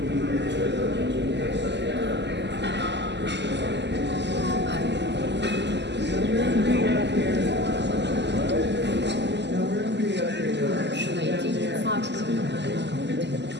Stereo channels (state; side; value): late; left; 0.51 ms